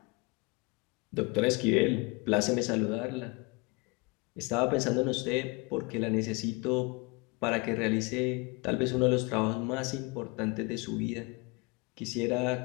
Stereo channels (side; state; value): right; quieter; 27.4 dB